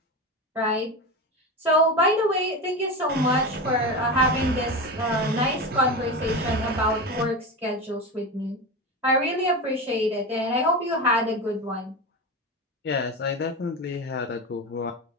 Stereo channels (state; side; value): normal; both; correlation 0.22